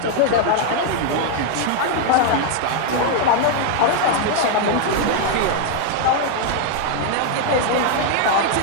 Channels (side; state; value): both; different; correlation 0.00